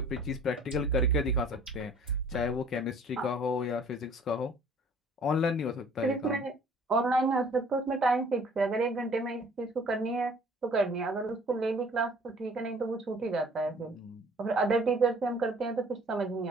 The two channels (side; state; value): both; normal; correlation 0.53